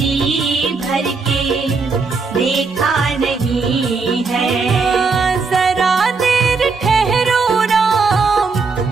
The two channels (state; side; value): quieter; left; 4.5 dB